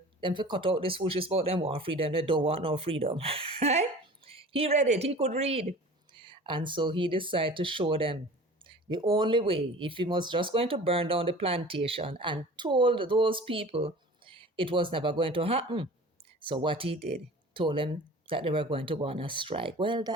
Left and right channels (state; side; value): normal; both; correlation 0.41